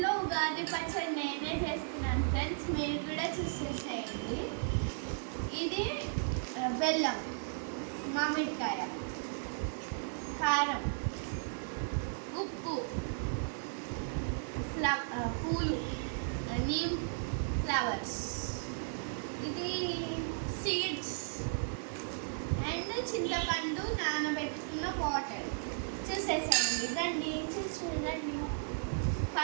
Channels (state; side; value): silent; left; digital silence